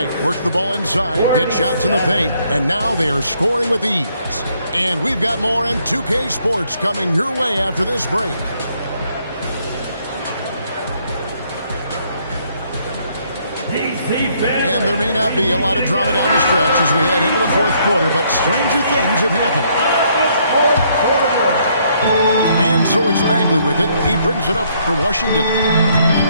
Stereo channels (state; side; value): inverted; both; correlation -0.69